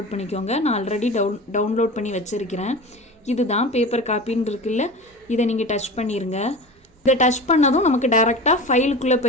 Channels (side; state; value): both; normal; correlation 0.32